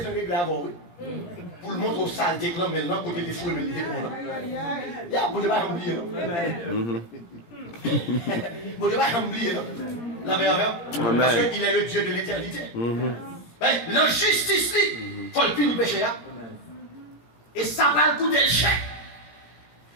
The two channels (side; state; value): right; late; 17 ms